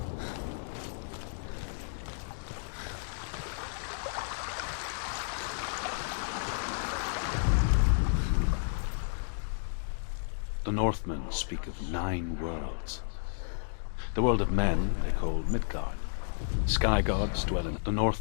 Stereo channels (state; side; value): silent; right; digital silence